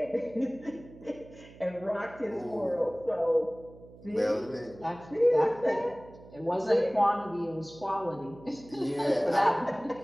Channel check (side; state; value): right; noise; hum, 20 dB below the sound